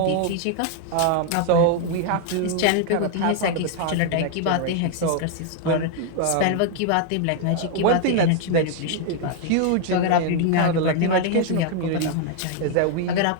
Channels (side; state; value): both; different; correlation 0.00